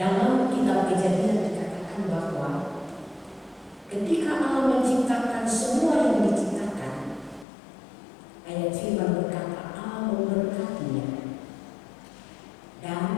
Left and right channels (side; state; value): right; drops out; at 7.5 s